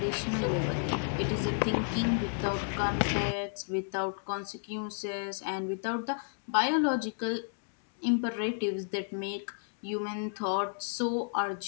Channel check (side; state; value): right; silent; digital silence